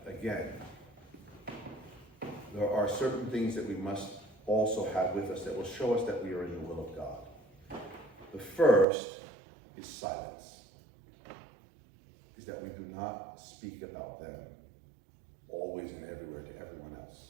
again, there are certain things that we must also have with us that will show us that we are in the will of God. The first is silence. Is that we do not speak about them always and everywhere to everyone else.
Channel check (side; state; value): left; drops out; at 8.8 s